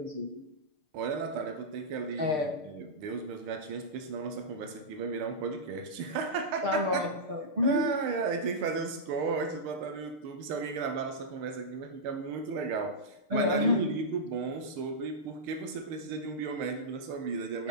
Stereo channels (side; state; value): left; late; 6.6 ms